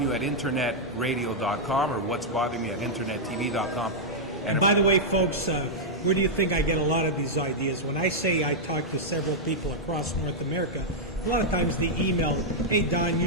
you at internetradio.com or what's bothering you at internettv.com. And by the way, folks, where do you think I get a lot of these ideas? When I say I talk to several people across North America, a lot of times the email, hey, Don,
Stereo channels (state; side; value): normal; both; correlation -0.06